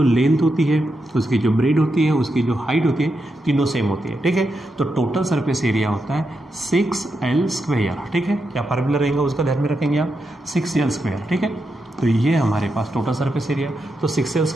लेंथ होती है, उसकी जो ब्रेड होती है, उसकी जो हाइट होती है, तीनों सेम होती है। ठीक है, तो टोटल सरफेस एरिया होता है 6L²। ठीक है, क्या फार्मूला रहेगा उसका ध्यान में रखेंगे आप, 6L²। ठीक है, तो ये हमारे पास टोटल सरफेस एरिया, तो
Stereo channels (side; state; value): both; normal; correlation 0.85